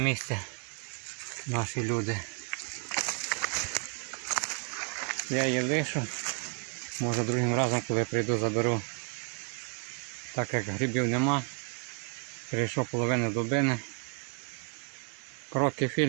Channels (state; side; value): quieter; left; 36.0 dB